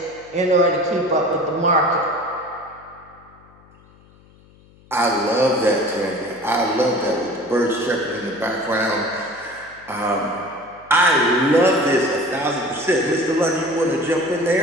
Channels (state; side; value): noise; left; hum, 27 dB below the sound